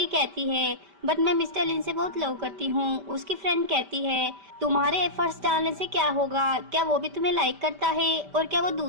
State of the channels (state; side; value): late; left; 5.1 ms